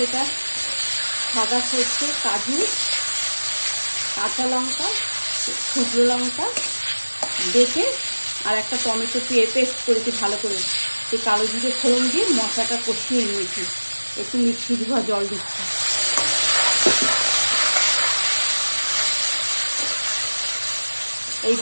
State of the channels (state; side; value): inverted; both; correlation -1.00